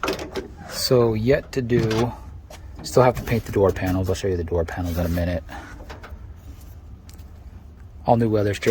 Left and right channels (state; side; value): identical; both; correlation 1.00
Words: So yet to do, still have to paint the door panels. I'll show you the door panels in a minute. All new weather